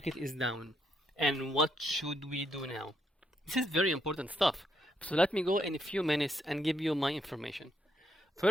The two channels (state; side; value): normal; both; correlation 0.76